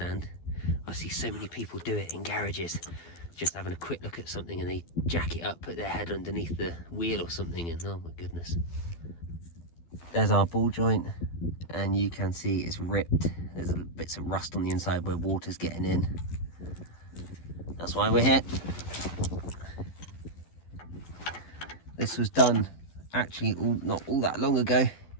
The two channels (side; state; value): right; late; 12 ms